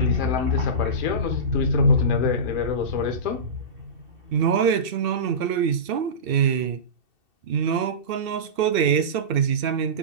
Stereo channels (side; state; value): left; late; 2.7 ms